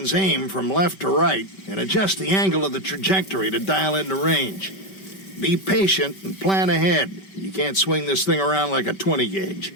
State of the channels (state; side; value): late; right; 5.2 ms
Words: aim from left to right and adjust the angle of the trajectory to dial in the range. Be patient and plan ahead. You can't swing this thing around like a 20 gauge.